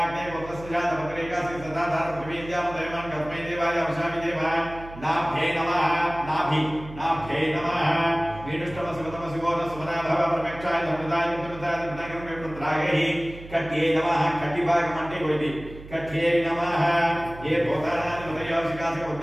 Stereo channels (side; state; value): right; noise; hum, 15 dB below the sound